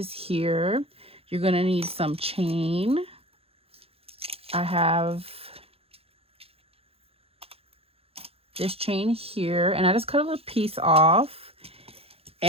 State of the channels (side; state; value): left; late; 0.28 ms